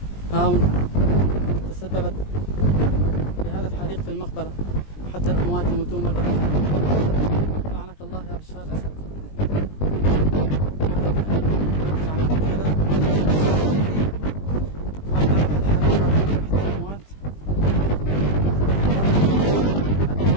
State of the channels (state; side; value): late; right; 20 ms